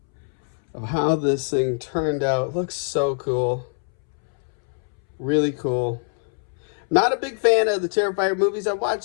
of how this thing turned out. It looks so cool. Really cool. Not a big fan of the Terrifier movies. I watched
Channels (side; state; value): right; silent; 63 dB below the other